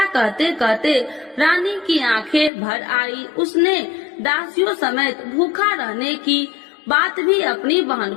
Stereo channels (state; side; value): drops out; right; at 2.5 s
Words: कहते कहते रानी की आंखें भर आई। उसने दासियों समेत भूखा रहने की बात भी अपनी बहन